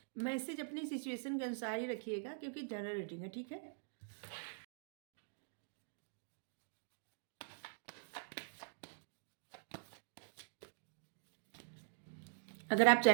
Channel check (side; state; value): left; silent; digital silence